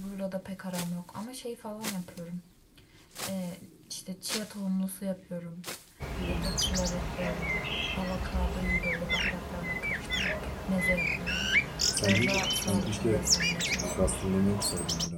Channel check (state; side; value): identical; both; correlation 1.00